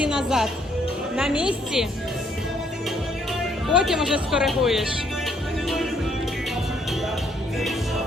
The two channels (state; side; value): normal; both; correlation 0.68